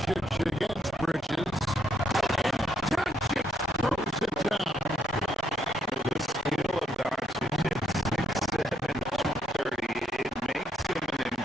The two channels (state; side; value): normal; both; correlation 0.75